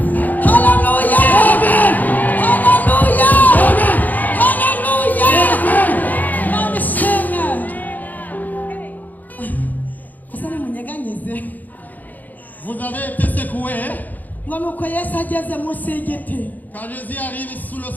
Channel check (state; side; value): late; right; 0.082 ms